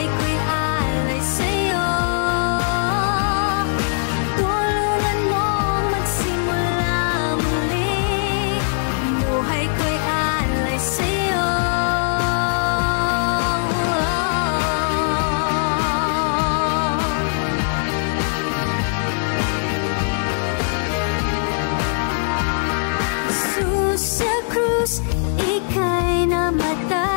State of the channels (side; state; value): right; silent; 65 dB below the other